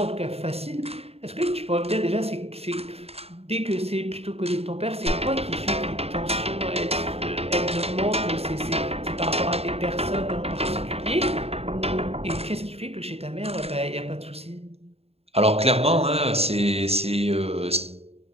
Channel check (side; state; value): left; late; 0.29 ms